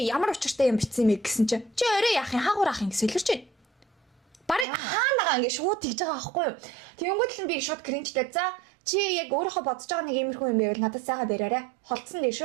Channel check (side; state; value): left; drops out; at 4.7 s